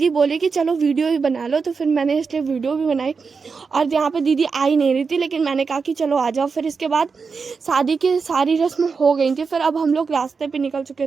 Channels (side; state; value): left; quieter; 5.1 dB